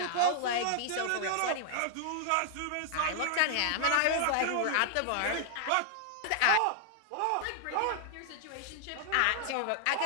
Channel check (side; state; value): both; different; correlation -0.01